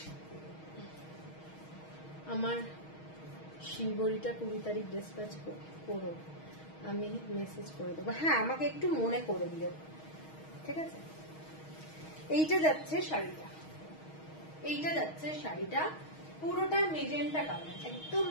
আমার শিবরিটা 20 তারিখ ডিসপ্যাচ করো, আমি মেসেজ করে দেবো। হ্যাঁ, আমাকে একটু মনে করে দিও। ঠিক আছে, এইটা যাচ্ছে শাড়িটা, এইটা যাচ্ছে শাড়িটা পুরোটা মেজেন্টা কালার, একদম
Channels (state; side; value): late; right; 6.3 ms